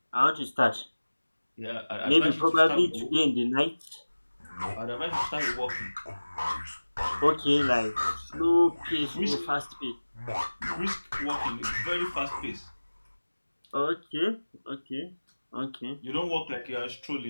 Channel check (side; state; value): both; inverted; correlation -1.00